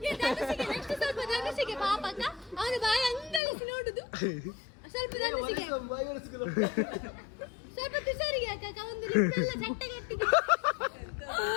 ಅವನು ಬಾಯಿ ಅಂಗಳಿಸಿ ನೋಡುದು. ಸ್ವಲ್ಪ ಸ್ವಲ್ಪ ತುಷಾರಿಗೆ ಹಾಕ. ಒಂದು ಲಿಪ್ಪೆಲ್ಲ ಚಟ್ಟಗಟ್ಟಿಗೆ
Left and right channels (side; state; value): right; drops out; at 3.4 s